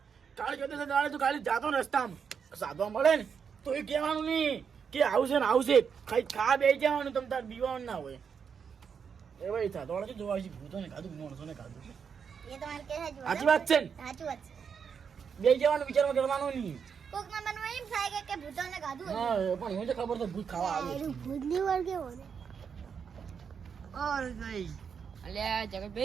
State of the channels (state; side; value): quieter; left; 6.7 dB